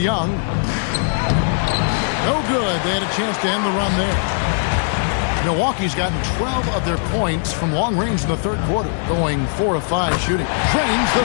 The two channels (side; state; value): right; silent; digital silence